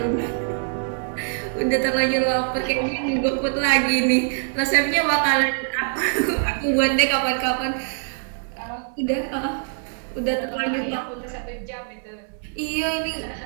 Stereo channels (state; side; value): silent; left; 63 dB below the other